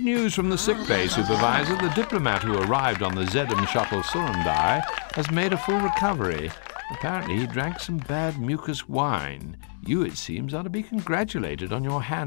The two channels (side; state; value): right; silent; digital silence